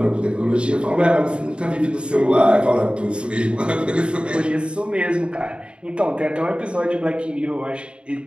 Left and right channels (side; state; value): left; late; 0.055 ms